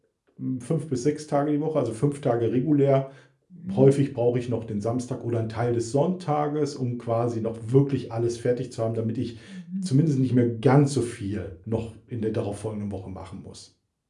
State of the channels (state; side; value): identical; both; correlation 1.00